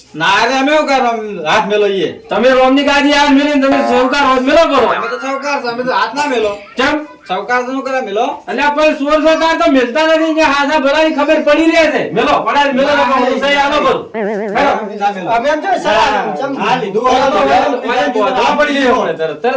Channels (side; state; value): both; identical; correlation 1.00